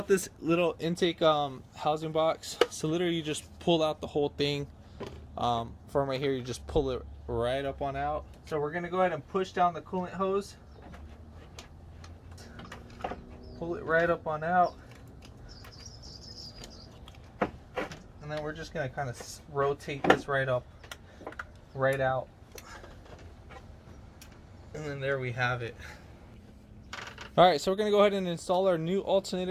this little intake housing box. So literally you just pull out the whole thing. From right here, you just pull it right up on out. So we're gonna go ahead and push down the coolant hose. Pull it right up on out. And then we're just gonna kind of rotate this right up, right out. And then there we have it. All right, so we're gonna go ahead and install our new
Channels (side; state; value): both; identical; correlation 1.00